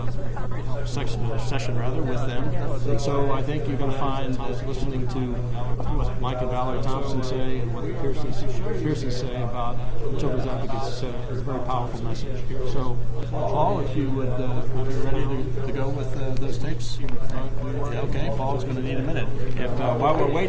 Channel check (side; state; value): both; identical; correlation 1.00